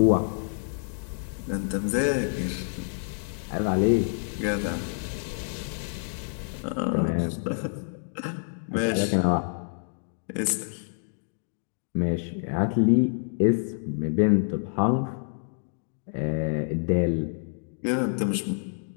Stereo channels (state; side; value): silent; right; digital silence